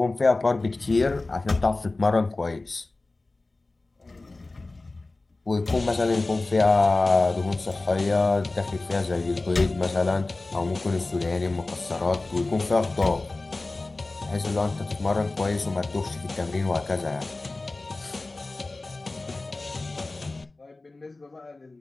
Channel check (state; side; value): quieter; right; 3.2 dB